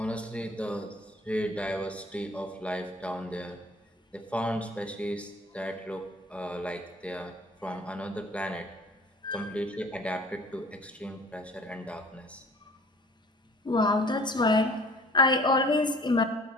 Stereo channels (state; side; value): normal; both; correlation 0.50